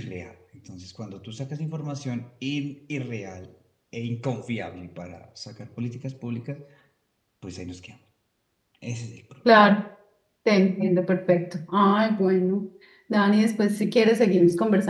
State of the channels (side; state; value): both; identical; correlation 1.00